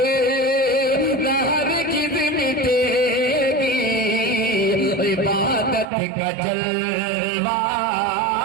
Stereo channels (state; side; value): drops out; left; at 5.9 s